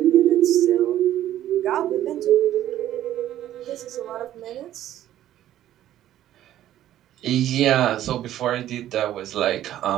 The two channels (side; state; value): left; quieter; 12.6 dB